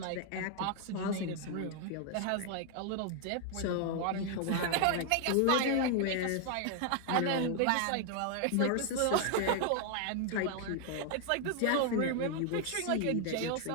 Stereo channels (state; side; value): different; both; correlation 0.00